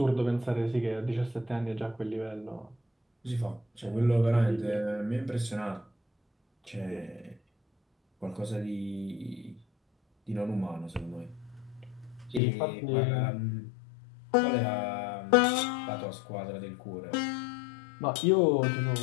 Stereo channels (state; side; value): drops out; right; at 12.4 s